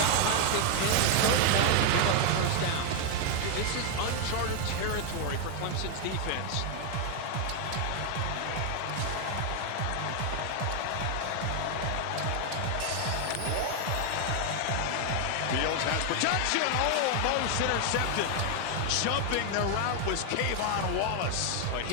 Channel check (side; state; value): both; different; correlation 0.00